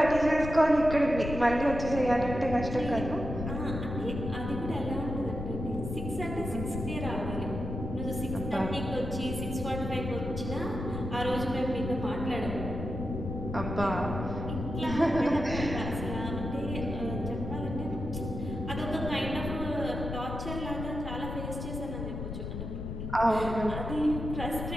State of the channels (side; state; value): left; noise; rumble, 5 dB below the sound